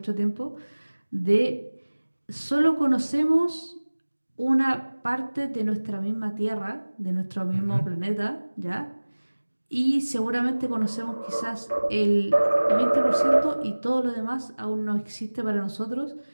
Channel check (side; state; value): both; inverted; correlation -1.00